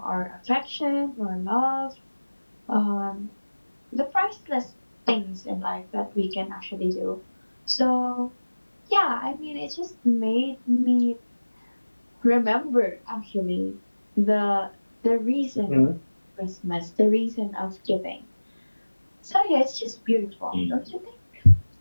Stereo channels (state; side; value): inverted; both; correlation -1.00